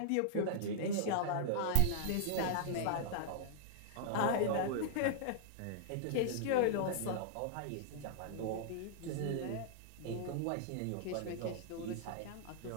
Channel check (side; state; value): both; different; correlation -0.01